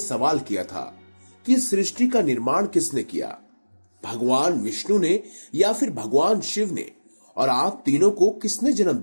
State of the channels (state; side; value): inverted; both; correlation -1.00